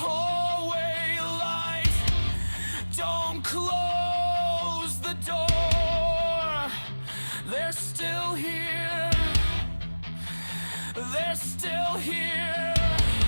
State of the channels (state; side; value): inverted; both; correlation -1.00